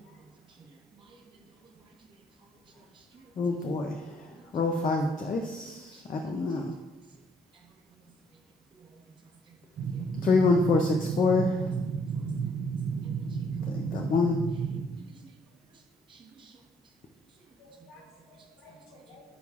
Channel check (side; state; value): both; normal; correlation 0.66